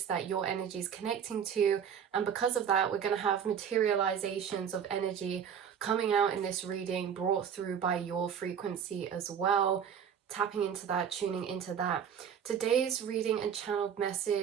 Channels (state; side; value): quieter; left; 7.9 dB